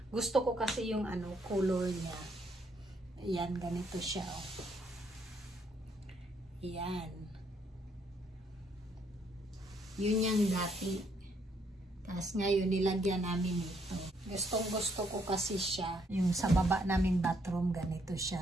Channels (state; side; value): normal; both; correlation 0.71